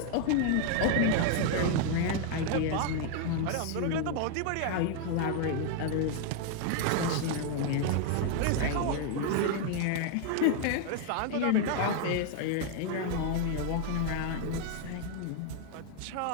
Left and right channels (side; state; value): both; different; correlation 0.00